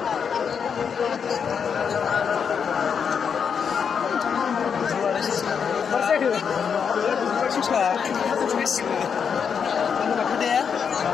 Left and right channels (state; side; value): quieter; right; 6.8 dB